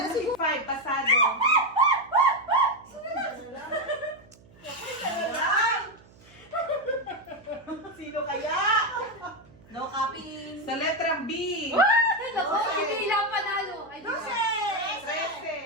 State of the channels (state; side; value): noise; right; hum, 26 dB below the sound